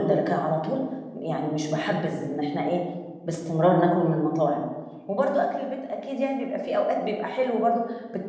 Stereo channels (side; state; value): both; identical; correlation 1.00